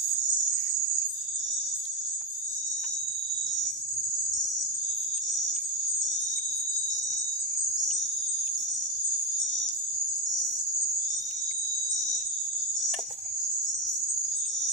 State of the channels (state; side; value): normal; both; correlation 0.08